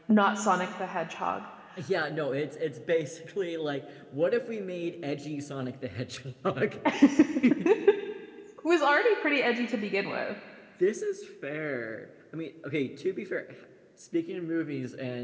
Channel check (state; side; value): identical; both; correlation 1.00